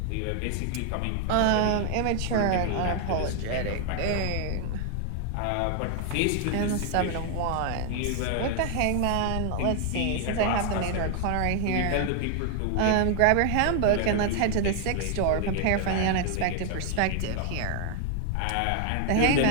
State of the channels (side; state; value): both; different; correlation 0.00